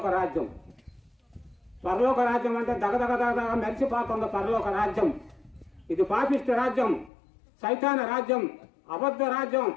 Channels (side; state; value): right; drops out; at 7.1 s